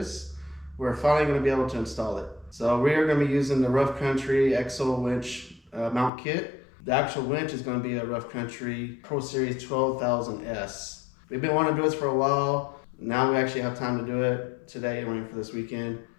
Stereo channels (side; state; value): right; drops out; at 6.1 s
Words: we're finally going to be able to install it. So we are going to be using the Rough Country EXO Winch mount kit. The actual winch is going to be a Rough Country PRO Series 12,000S. We've been wanting to do this for a while. Now we actually have time to do it today and waiting for this weekend.